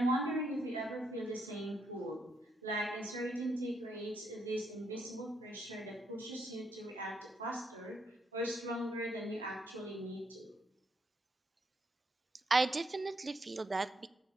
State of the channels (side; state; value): both; normal; correlation 0.76